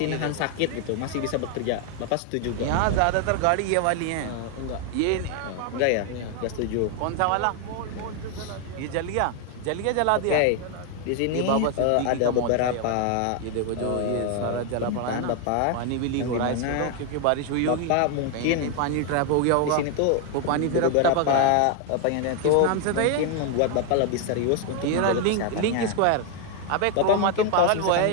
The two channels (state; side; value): different; both; correlation 0.00